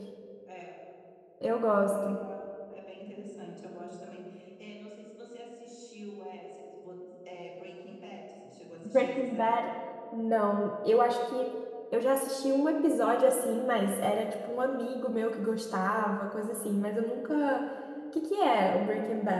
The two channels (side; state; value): both; identical; correlation 1.00